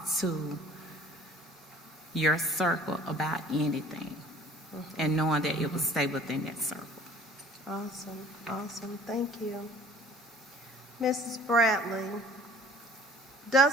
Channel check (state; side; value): normal; both; correlation 0.50